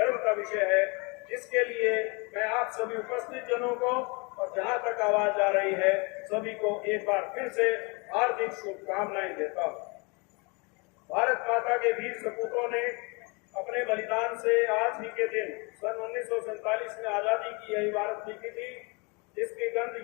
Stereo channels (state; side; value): quieter; right; 30.2 dB